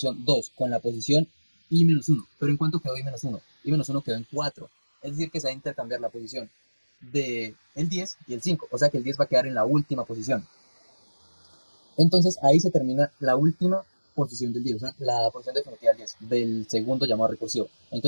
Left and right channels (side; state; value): both; inverted; correlation -1.00